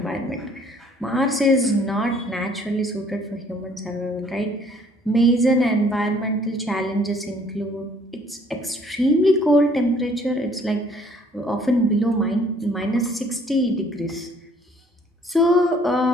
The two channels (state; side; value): normal; both; correlation 0.59